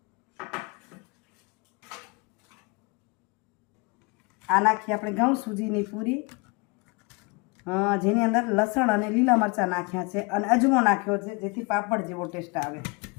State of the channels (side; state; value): right; quieter; 29.2 dB